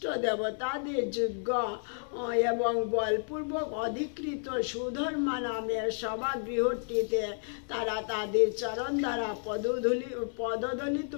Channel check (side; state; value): right; silent; 57 dB below the other